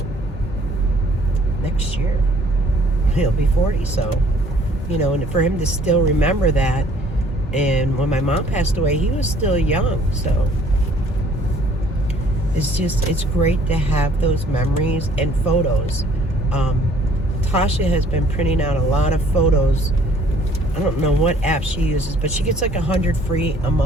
next year he'll be 40. So, you know, and for him to still remember that, and when my mom passed away, he was still young. So it's great to have those memories and photos. Tasha has been printing out a lot of photos. I don't know what app she uses, but she gets like 100 free a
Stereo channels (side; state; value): both; normal; correlation 0.58